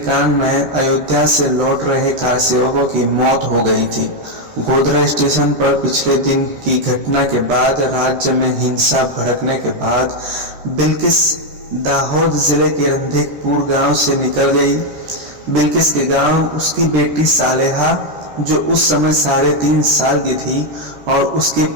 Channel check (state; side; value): late; left; 13 ms